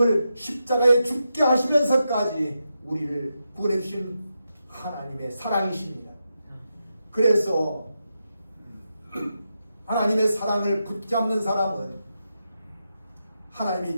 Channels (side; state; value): both; inverted; correlation -0.87